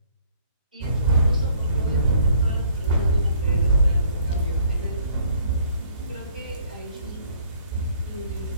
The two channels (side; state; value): both; inverted; correlation -0.60